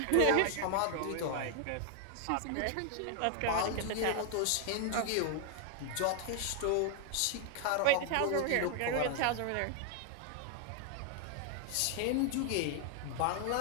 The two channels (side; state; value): both; different; correlation 0.00